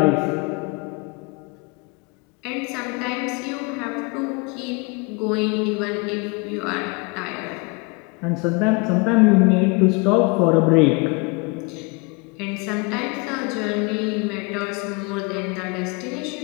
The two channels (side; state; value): right; quieter; 29.5 dB